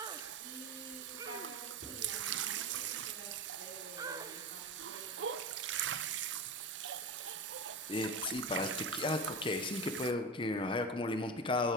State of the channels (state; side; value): normal; both; correlation 0.25